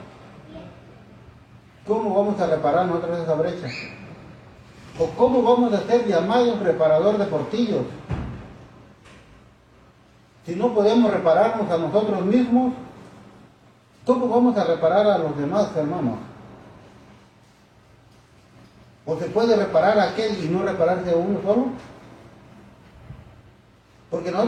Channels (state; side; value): identical; both; correlation 1.00